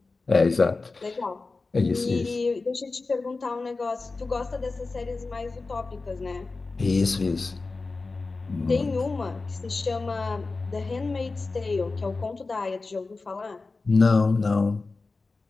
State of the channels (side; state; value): right; quieter; 3.7 dB